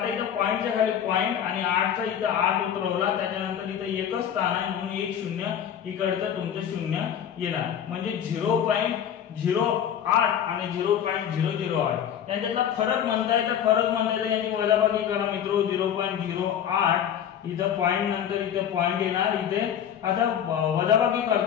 इथं पॉइंटच्या खाली पॉइंट आणि 8 चा इथं 8 उतरवला, त्याच्यानंतर इथं एकच स्थान आहे म्हणून 1 0 इकडचं तुमचं 0 येणार म्हणजे 0.08 आणि 0.008 यांच्यातला फरक म्हणताय तर फरक म्हणताय याची वजाबाकी करा मित्रो. 0.08 इथं पॉइंट नंतर इथे पॉइंट येणार. इथे आता वजाबाकी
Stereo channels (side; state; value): right; quieter; 9.2 dB